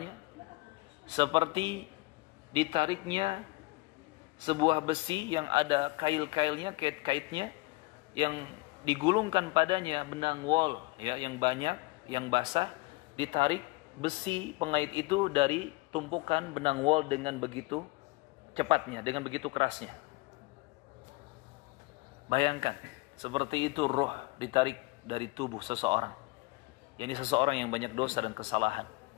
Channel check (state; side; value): quieter; right; 23.3 dB